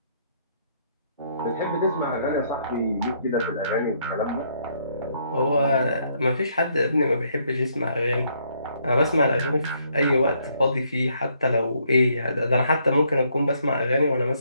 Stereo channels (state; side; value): inverted; both; correlation -0.70